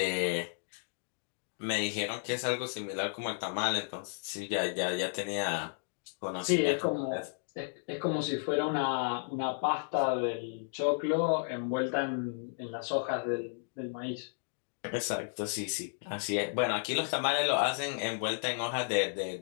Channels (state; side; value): silent; right; digital silence